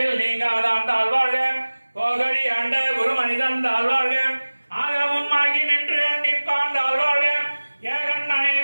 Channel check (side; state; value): both; inverted; correlation -1.00